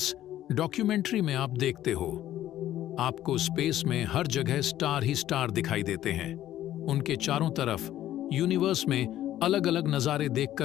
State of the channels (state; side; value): quieter; right; 12.9 dB